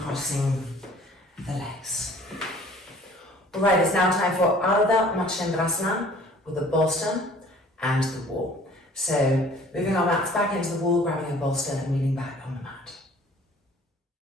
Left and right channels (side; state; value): both; normal; correlation 0.52